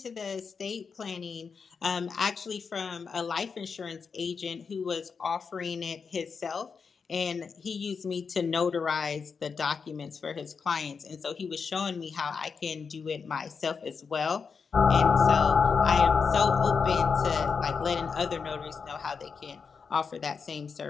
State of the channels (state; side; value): quieter; right; 5.6 dB